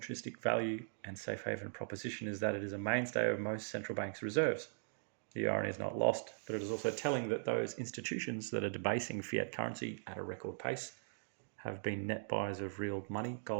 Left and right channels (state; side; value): silent; left; digital silence